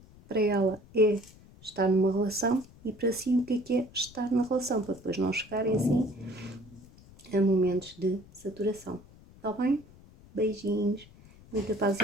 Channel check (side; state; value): left; noise; rumble, 23 dB below the sound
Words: para ela é estar numa relação e para si o que é estar na relação, para depois não chegarem assim a momentos de saturação. Está bem? Beijinhos, muita paz e